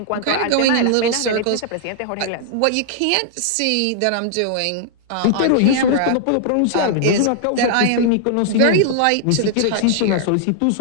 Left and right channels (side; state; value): both; different; correlation -0.01